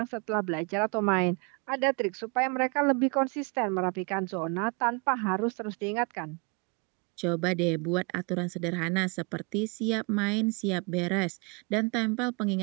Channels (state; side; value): quieter; left; 32.0 dB